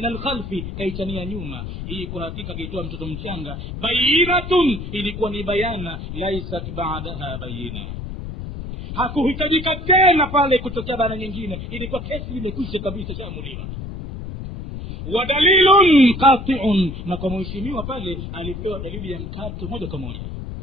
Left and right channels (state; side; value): noise; left; rumble, 8 dB below the sound